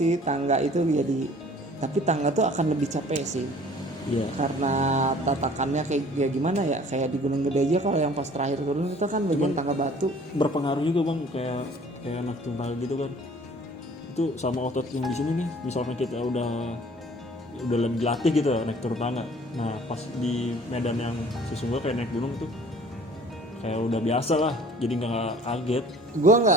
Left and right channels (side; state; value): both; normal; correlation 0.52